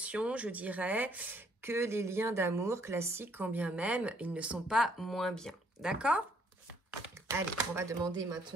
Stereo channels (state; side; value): normal; both; correlation 0.66